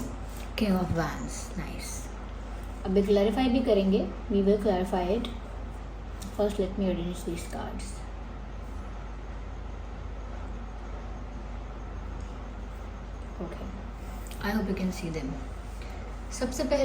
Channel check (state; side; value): identical; both; correlation 1.00